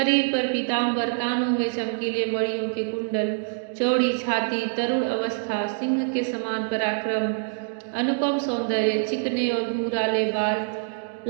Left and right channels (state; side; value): silent; left; digital silence